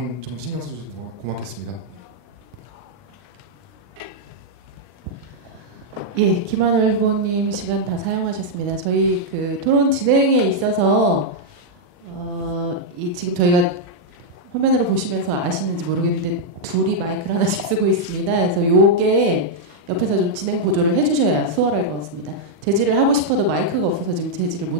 좀 신경 써주셔서 고맙겠습니다. 예, 김하늘 후보님 시간 다 사용하셨습니다. 저희 그 토론 진행에 있어서 지금 저희가 화면으로 보시면서 아시는지 모르겠는데 둘이 마이크를 하나씩 쓰고 있습니다. 그래서 요게 옆에서 좀 진행 보조를 해주셔야 수월할 것 같습니다. 제지를 하고 싶어도 마이크가 없어서 지금 제지를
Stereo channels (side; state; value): left; late; 40 ms